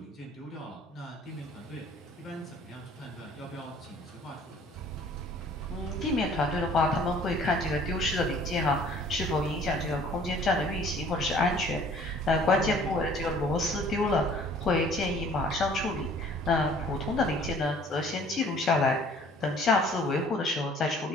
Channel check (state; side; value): normal; both; correlation 0.54